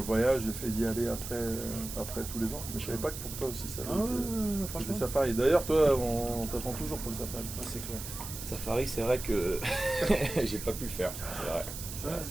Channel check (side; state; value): right; noise; hiss, 9 dB below the sound